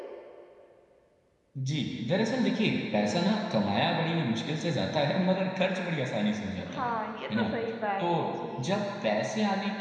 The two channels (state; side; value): identical; both; correlation 1.00